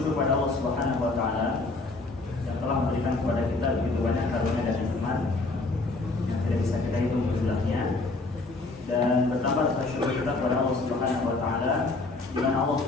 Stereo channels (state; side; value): quieter; right; 3.4 dB